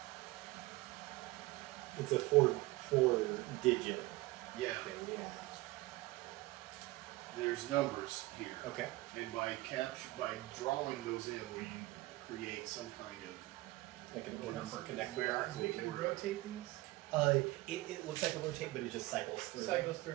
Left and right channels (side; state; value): left; quieter; 20.2 dB